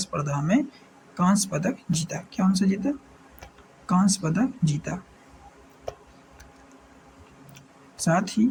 में कांस्य पदक जीता। कौन सा जीता? कांस्य पदक जीता। साथ ही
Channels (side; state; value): both; identical; correlation 1.00